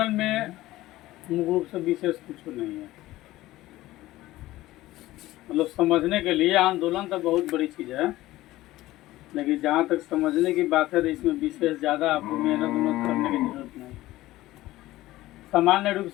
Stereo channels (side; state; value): right; quieter; 16.7 dB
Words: में मूल रूप से विशेष कुछ नहीं है। मतलब समझने के लिए आंदोलन तो बहुत बड़ी चीज़ है, लेकिन जहाँ तक समझने की बात है तो इसमें विशेष ज़्यादा आपको मेहनत उन्नत करने की जरूरत नहीं। सामान्य रूप